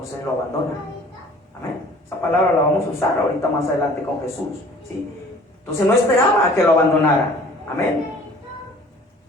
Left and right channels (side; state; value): both; normal; correlation 0.50